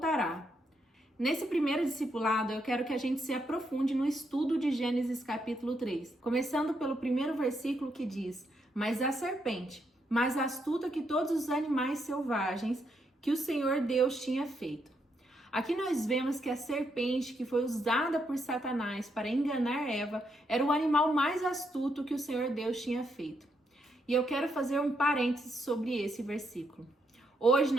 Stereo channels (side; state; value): both; normal; correlation 0.78